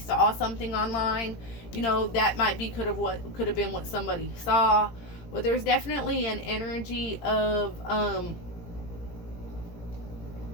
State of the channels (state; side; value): late; right; 17 ms